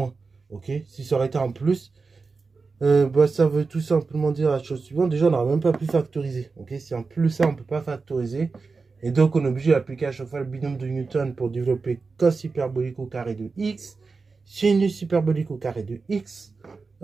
Ok, si ça aurait été en plus, bah, ça veut tout simplement dire la chose suivante. Déjà, on n'aurait même pas pu factoriser. Ok, si en plus ça, on ne peut pas factoriser. Et donc, on est obligé d'appliquer à chaque fois le binôme de Newton pour développer cos hyperbolique au carré de x, sinus hyperbolique au carré de x.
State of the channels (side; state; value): left; quieter; 4.4 dB